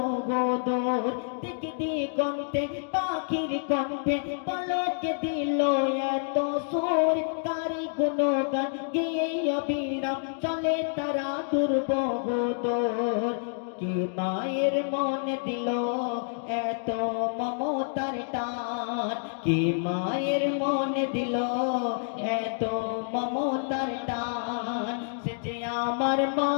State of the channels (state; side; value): silent; right; digital silence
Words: দূর। দিক দিগন্তে পাখির কণ্ঠে পলকে দিল এত সুর, কার গুণগান গেয়ে অবিরাম চলে তারা দুর্বহ দূর। কি মায়ের মনে দিল এত মমতার টান, কি মায়ের মনে দিল এত মমতার টান। সে যে আমার